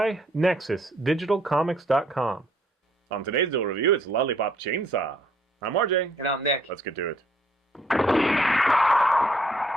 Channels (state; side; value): normal; both; correlation 0.65